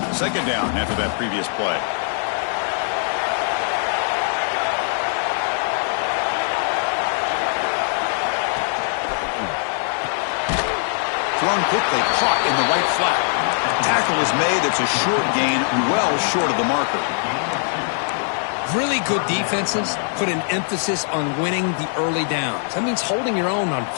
Second down after that previous play. thrown quickly, caught in the right flat. Tackle is made. It's a short gain, well short of the marker. Really good defenses put an emphasis on winning the early downs. That means holding your own on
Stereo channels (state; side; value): silent; right; 62 dB below the other